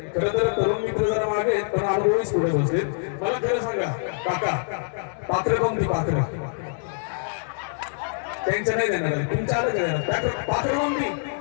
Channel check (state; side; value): silent; right; digital silence